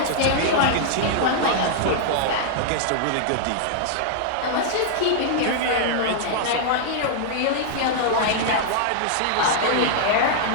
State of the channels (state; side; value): different; both; correlation -0.01